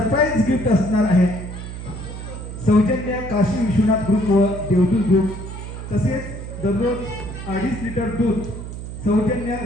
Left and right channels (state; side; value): noise; right; hum, 9 dB below the sound